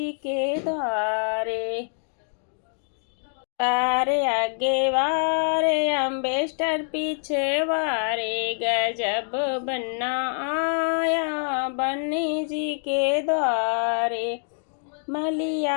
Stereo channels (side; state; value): right; silent; digital silence